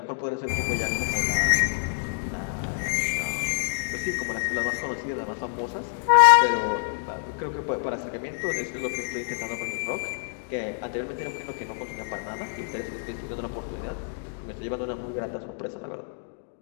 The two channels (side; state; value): right; silent; digital silence